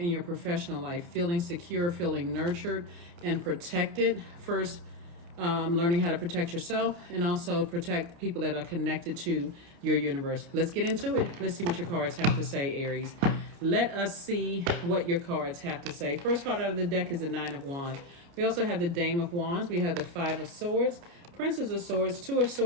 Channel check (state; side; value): late; left; 29 ms